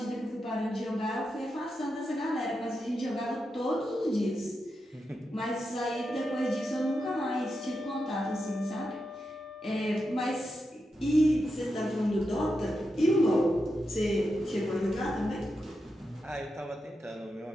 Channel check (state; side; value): normal; both; correlation 0.87